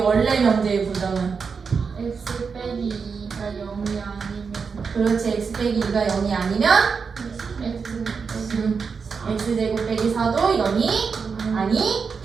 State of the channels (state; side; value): quieter; left; 5.5 dB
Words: 명제의 부정은? x 빼기 2가 0이 아니면 그렇지. x 빼기 2가 0이 아니면 x x제곱 빼기 4도 0이